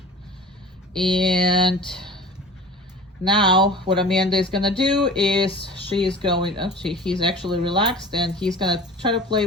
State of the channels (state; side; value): normal; both; correlation 0.40